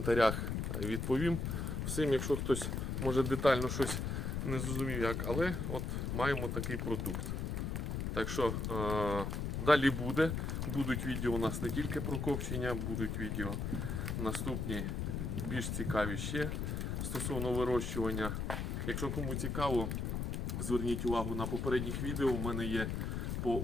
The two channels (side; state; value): left; noise; rumble, 2 dB below the sound